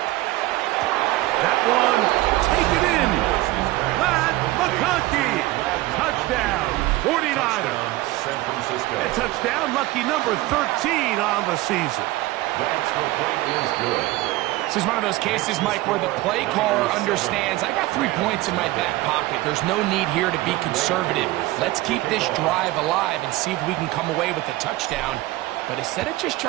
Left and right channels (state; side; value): quieter; left; 18.2 dB